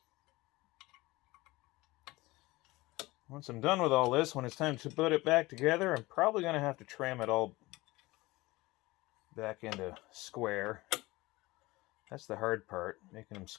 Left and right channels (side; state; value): right; quieter; 20.6 dB